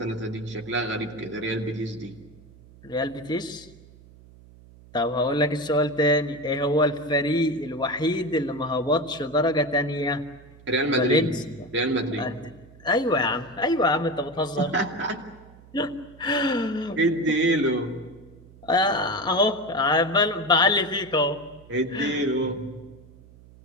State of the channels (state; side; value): noise; right; hum, 23 dB below the sound